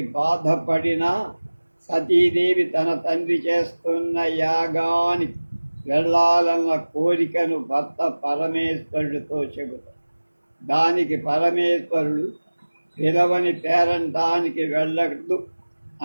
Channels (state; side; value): inverted; both; correlation -1.00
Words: బాధపడిన సతీదేవి తన తండ్రి చేస్తున్న యాగానికి వెళ్ళాలన్న కోరికను భర్త పరమేశ్వరుడితో చెబుతాడు. దానికి పరమేశ్వరుడు పిలవని పేరంటానికి వెళ్ళదు